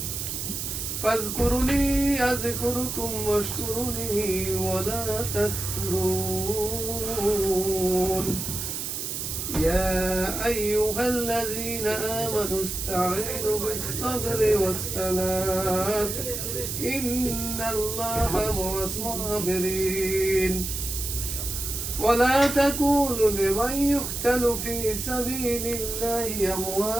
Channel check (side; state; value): right; noise; hiss, 4 dB below the sound